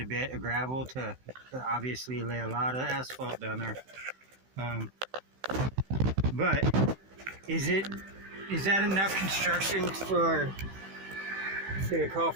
bit of gravel to obviously lay a lot of asphalt down there. But is that enough construction to call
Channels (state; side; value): late; left; 16 ms